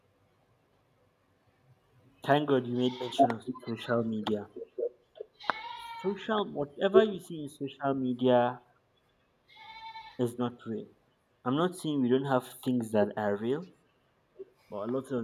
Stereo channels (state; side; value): identical; both; correlation 1.00